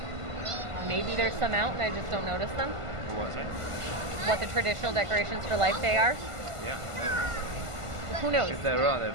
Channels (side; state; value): left; late; 1.5 ms